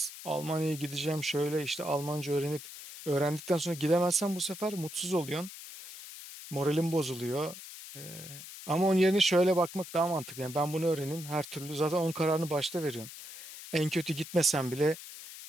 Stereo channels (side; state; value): left; noise; hiss, 13 dB below the sound